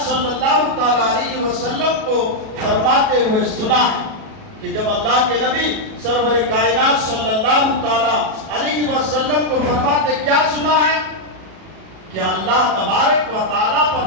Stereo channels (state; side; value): late; left; 37 ms